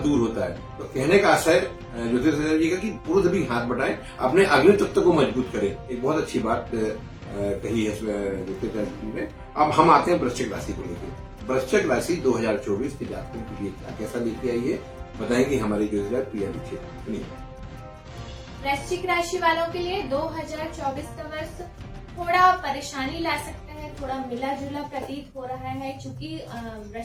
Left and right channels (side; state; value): both; identical; correlation 1.00